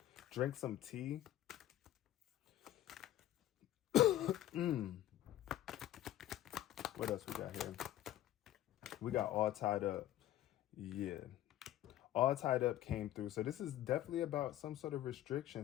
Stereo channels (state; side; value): quieter; right; 13.2 dB